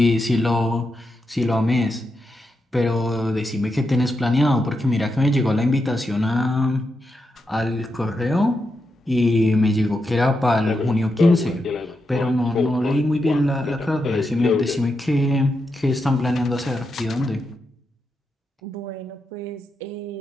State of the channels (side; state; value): both; normal; correlation 0.86